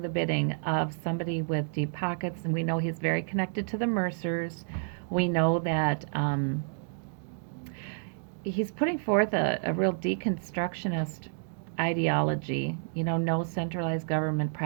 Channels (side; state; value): left; silent; digital silence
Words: the bidding of somebody with deep pockets, and we know he's very connected to the Mercers. We know that he's putting forth a real deconstructionist ideology. No centralized government